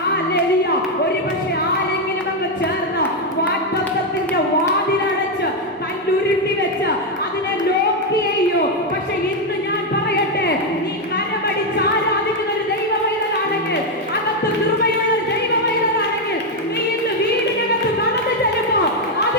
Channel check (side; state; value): both; normal; correlation 0.04